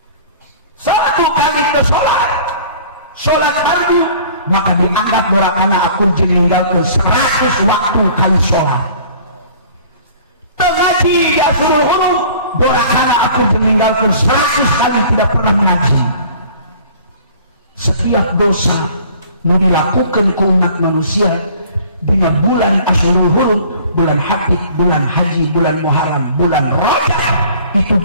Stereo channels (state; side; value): inverted; both; correlation -0.49